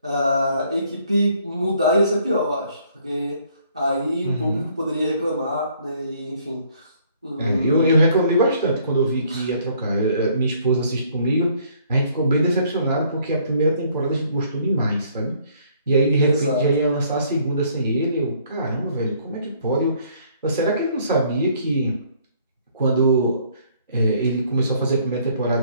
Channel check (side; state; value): both; inverted; correlation -0.63